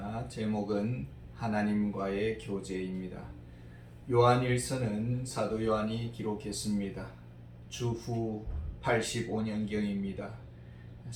제목은 하나님과의 교제입니다. 요한일서는 사도 요한이 기록했습니다. 주후 85년경입니다.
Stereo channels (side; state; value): both; identical; correlation 1.00